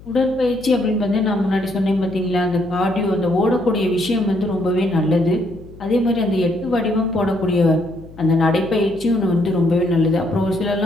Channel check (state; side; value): noise; left; hum, 20 dB below the sound